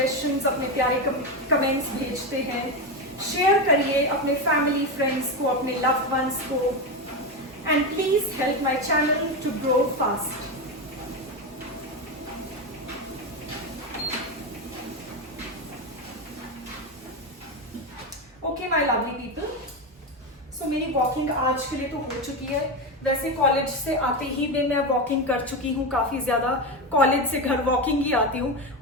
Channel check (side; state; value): both; normal; correlation 0.14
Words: अपने प्यारे comments भेजते हैं. शेयर करिए अपने family, friends को, अपने loved ones को. And please help my channel to grow fast. Okay, my lovely people. So मेरी वॉकिंग आज के लिए तो हो चुकी है. वैसे कॉलेज से आते ही भी मैं वॉकिंग कर चुकी हूँ काफी ज्यादा. कॉलेज से घर वॉकिंग ही आती हूँ